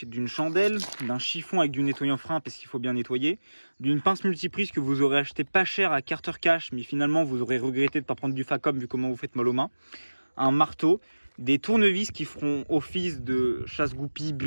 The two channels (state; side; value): inverted; both; correlation -1.00